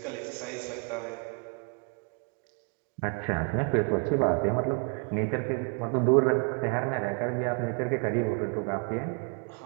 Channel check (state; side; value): quieter; left; 35.4 dB